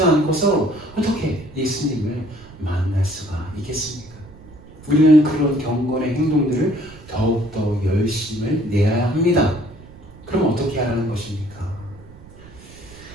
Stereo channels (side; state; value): right; noise; rumble, 20 dB below the sound